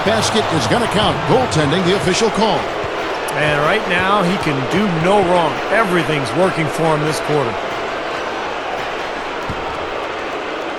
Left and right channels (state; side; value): identical; both; correlation 1.00